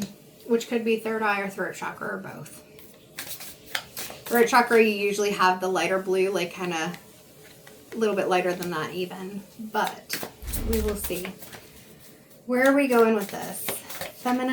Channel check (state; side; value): identical; both; correlation 1.00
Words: which could be third eye or throat chakra or both. Throat chakra, you usually have the lighter blue, like kind of a little bit lighter than that even, but we will see. Where are we going with this?